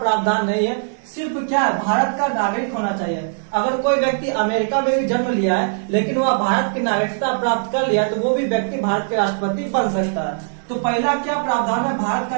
नहीं है। सिर्फ क्या है, भारत का नागरिक होना चाहिए। अगर कोई व्यक्ति अमेरिका में भी जन्म लिया है लेकिन वह भारत की नागरिकता प्राप्त कर लिया तो वो भी व्यक्ति भारत के राष्ट्रपति बन सकता है। तो पहला क्या प्रावधान है, भारत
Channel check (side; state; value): left; silent; digital silence